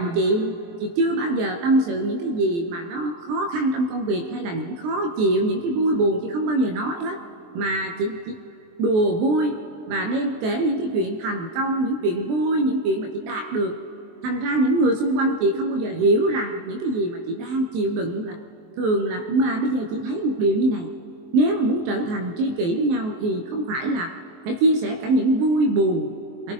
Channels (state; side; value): late; left; 23 ms